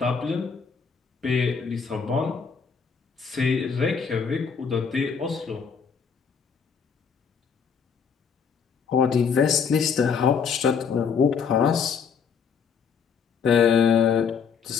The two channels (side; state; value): right; quieter; 6.3 dB